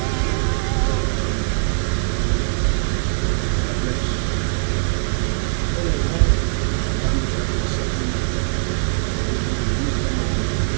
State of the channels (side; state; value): left; silent; digital silence